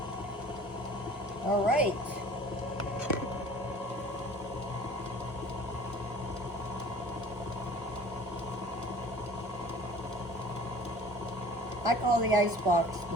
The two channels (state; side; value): normal; both; correlation 0.47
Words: All right. I call the icebox